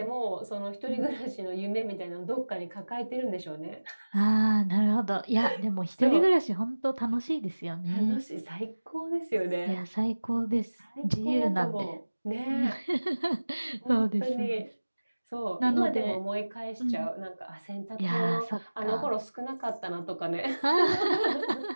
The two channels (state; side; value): inverted; both; correlation -1.00